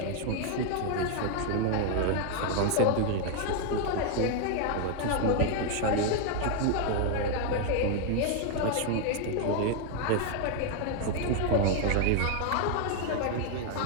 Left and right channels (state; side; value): different; both; correlation 0.00